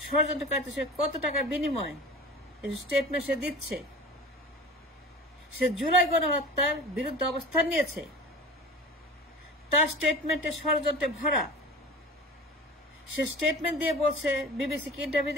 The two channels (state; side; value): normal; both; correlation 0.36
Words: ষড়যন্ত্রকারীদের সঙ্গে কত টাকার বিনিময় স্টেটমেন্ট সে দিচ্ছে। সে জুলাই গণহত্যার বিরুদ্ধে অবস্থান নিয়েছে, তার স্টেটমেন্টে ষড়যন্ত্রে ভরা। সে স্টেটমেন্ট দিয়ে বলছে, বিবিসিকে ইন্টারভিউ